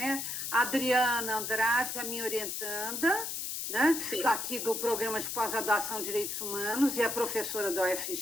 A Adriana Andrade, a minha orientanda, né? Aqui do Programa de Pós-Graduação em Direitos Humanos, e a professora da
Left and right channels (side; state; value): left; noise; hiss, 4 dB below the sound